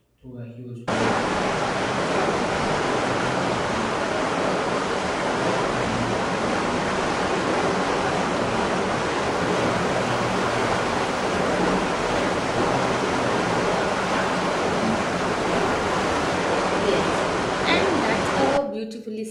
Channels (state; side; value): identical; both; correlation 1.00